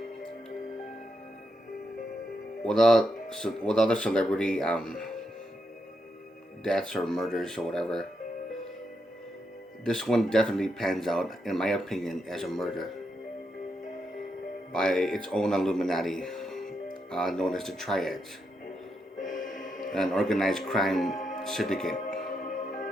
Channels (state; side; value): normal; both; correlation 0.82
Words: With other celebrity deaths or murders or whatever, this one definitely pans out, in my opinion, as a murder by its own Illuminati, known as the Triads, an organized crime syndicate.